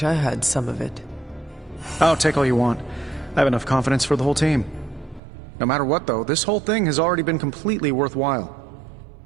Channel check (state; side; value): drops out; left; at 5.2 s